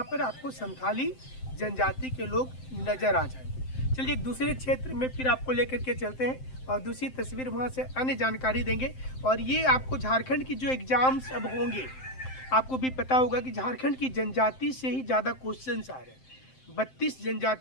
पर आपको संथाली जनजाति के लोग नज़र आ जाएंगे। चलिए एक दूसरे क्षेत्र में फिर आपको लेकर के चलते हैं और दूसरी तस्वीर वहाँ से अन्य जानकारी देंगे। और ये आपको झारखंड की जो एग्ज़ाम्स अब होंगे, आपको भी पता होगा कि झारखंड की जनजाति से ही ज़्यादा क्वेश्चंस आ रहे हैं। 32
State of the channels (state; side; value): late; right; 7.7 ms